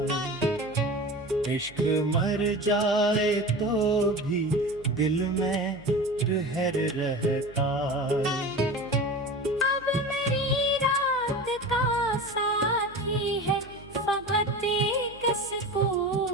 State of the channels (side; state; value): right; noise; hum, 22 dB below the sound